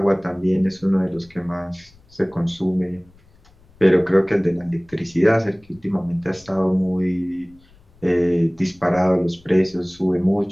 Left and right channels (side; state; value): left; noise; rumble, 29 dB below the sound